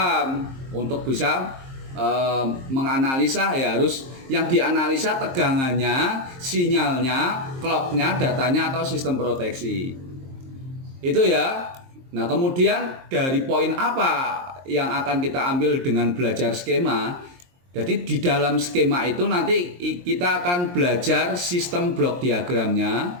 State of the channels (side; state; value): left; late; 23 ms